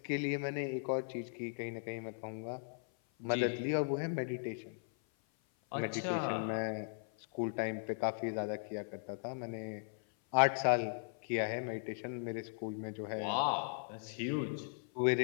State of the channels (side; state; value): right; silent; 53 dB below the other